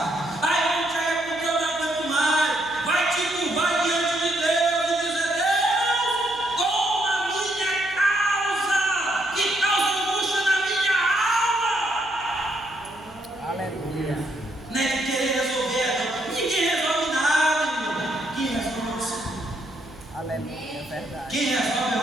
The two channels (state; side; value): noise; right; hum, 23 dB below the sound